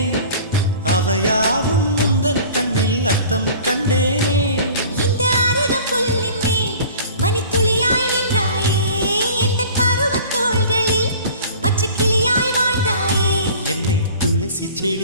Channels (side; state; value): both; inverted; correlation -0.44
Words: அவையாவும் முந்தன் கண்ணில் அர்த்தம் கண்டேனே. இந்த அருகம் புல்லின் மேல் மணித்துளியாய் நின்றாயே, எந்த பருவத் தோள்களில் பச்சை கிளியாய் வாழ்ந்தாயே. என்னை துளசி